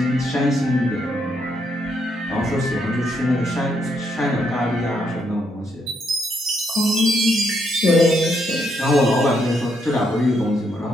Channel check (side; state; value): both; normal; correlation 0.76